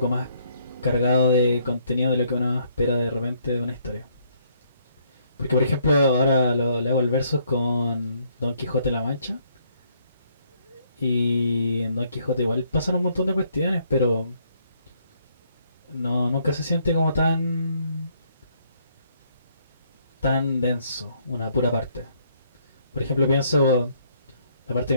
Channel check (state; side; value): inverted; both; correlation -0.68